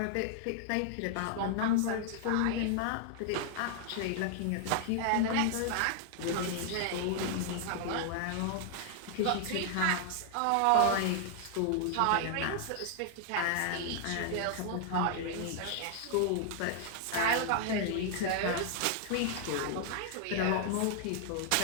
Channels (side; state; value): both; different; correlation 0.00